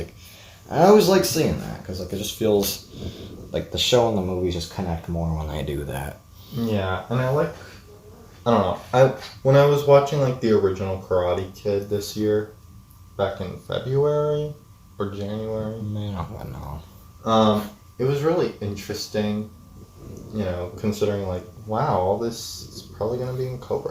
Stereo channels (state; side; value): identical; both; correlation 1.00